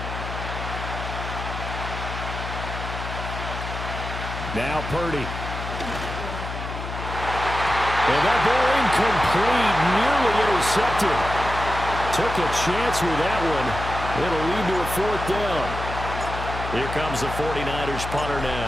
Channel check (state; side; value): noise; left; hum, 7 dB below the sound